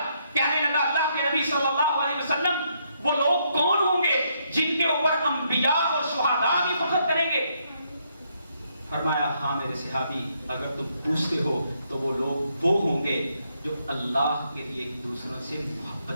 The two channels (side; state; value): both; inverted; correlation -0.74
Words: کہنے لگا اللہ کے نبی صلی اللہ علیہ وسلم وہ لوگ کون ہوں گے جن کے اوپر انبیاء اور شہداء بھی فخر کریں گے؟ فرمایا ہاں میرے صحابی، اگر تم پوچھتے ہو تو وہ لوگ وہ ہوں گے جو اللہ کے لیے ایک دوسروں سے